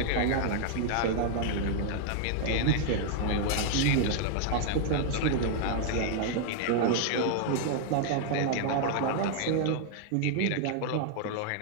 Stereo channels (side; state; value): both; different; correlation 0.00